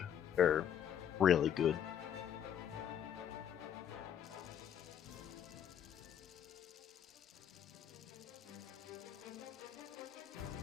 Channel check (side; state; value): right; quieter; 9.4 dB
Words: They're really good.